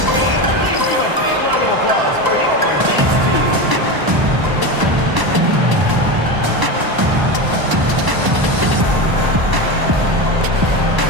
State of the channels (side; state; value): left; late; 1.0 ms